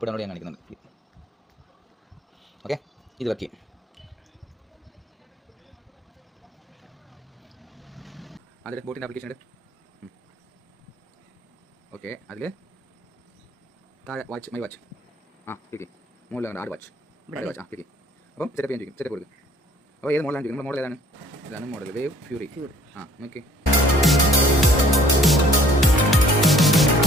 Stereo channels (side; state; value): both; normal; correlation 0.58